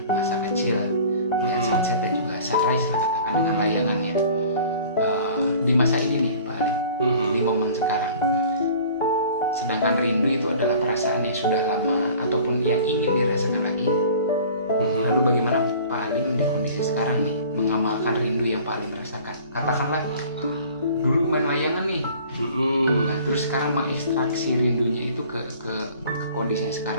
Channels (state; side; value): inverted; both; correlation -0.47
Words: masa kecil, melihat sunset dan juga sunrise lah katakan dengan layangannya. Di masa ini nih Pak Ali, di momen sekarang. Sedangkan rindu itu adalah perasaan yang sudah lama ataupun yang ingin dirasakan lagi. Lalu bagaimana Pak Alim di kondisi sekarang nih mengamalkan rindu yang Pak Alim rasakan? Katakanlah dulu main layangan nih, nah, terus sekarang mengekstraksi rindunya itu ke kondisi yang